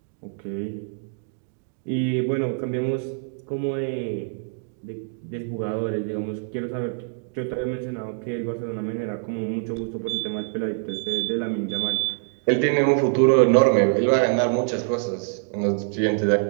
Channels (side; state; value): left; silent; digital silence